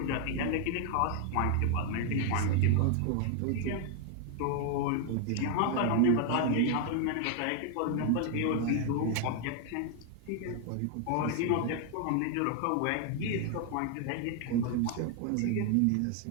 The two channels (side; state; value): both; different; correlation 0.00